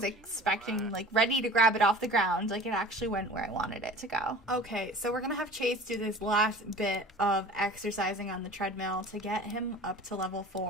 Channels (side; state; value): both; normal; correlation 0.42